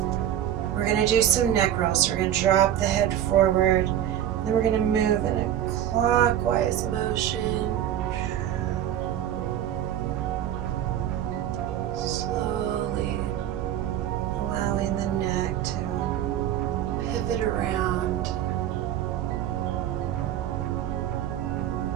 We're going to do some neck rolls. We're going to drop the head forward, then we're going to move in a clockwise motion. Slowly allowing the neck to pivot around.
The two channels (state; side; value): quieter; left; 11.0 dB